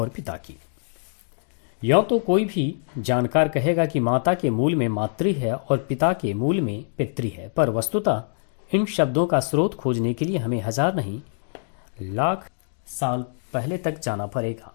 पिता की। यों तो कोई भी जानकार कहेगा कि माता के मूल में मातृ है और पिता के मूल में पितृ है, पर वस्तुतः इन शब्दों का स्रोत खोजने के लिए हमें हजार नहीं लाख साल पहले तक जाना पड़ेगा।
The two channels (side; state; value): right; silent; digital silence